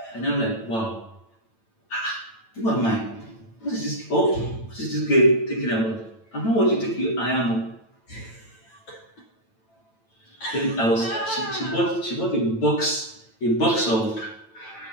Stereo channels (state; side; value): late; right; 9.0 ms